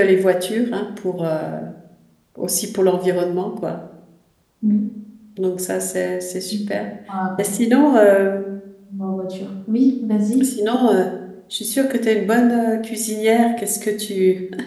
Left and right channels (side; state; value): both; identical; correlation 1.00